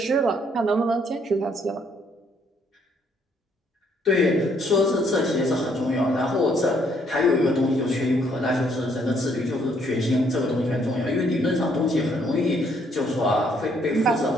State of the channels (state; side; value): normal; both; correlation 0.68